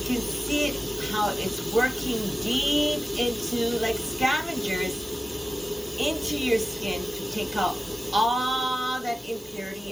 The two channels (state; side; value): normal; both; correlation 0.95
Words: can see it, how it's working deep into, like scavengers, into your skin to take out all that